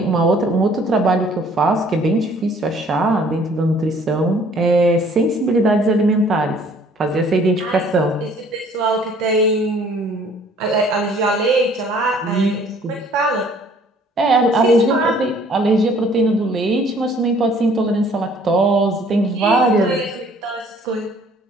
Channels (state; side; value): normal; both; correlation 0.57